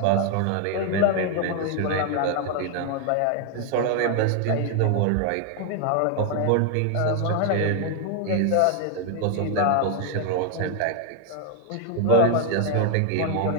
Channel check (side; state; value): both; different; correlation 0.00